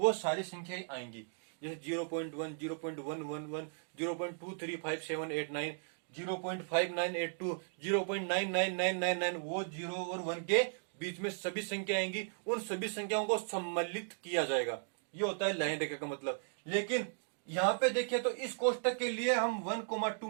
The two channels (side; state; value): left; silent; digital silence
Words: सारी संख्याएं आएंगी। जैसे 0.1, 0.111, 0.23578 0.5982, 0.99999, वो 0 और 1 के बीच में सभी संख्या आएंगी। उन सभी संख्याओं को सम्मिलित किया जाएगा, ये होता है लाइन रेखा का मतलब। लेकिन यहाँ पे देखिए तो इस कोष्टक के लिए हम 1,2